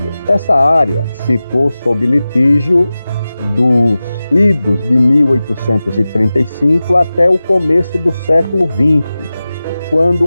Essa área ficou sob litígio dos idos de 1835 até o começo do século XX,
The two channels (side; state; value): both; inverted; correlation -0.96